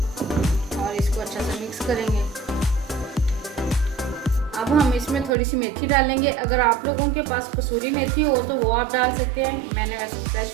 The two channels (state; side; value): drops out; left; at 5.4 s